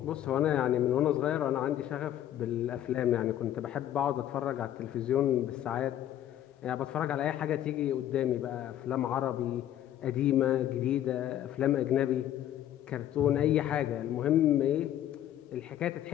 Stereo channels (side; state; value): right; quieter; 11.7 dB